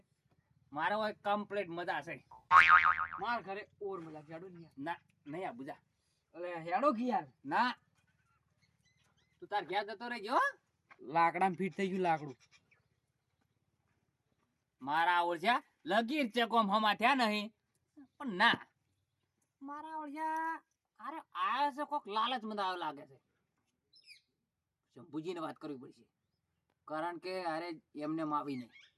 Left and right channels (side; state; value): both; identical; correlation 1.00